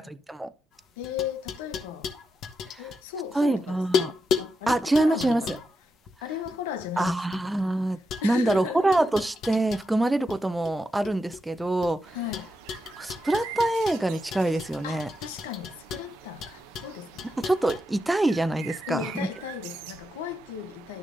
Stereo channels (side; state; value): both; normal; correlation 0.85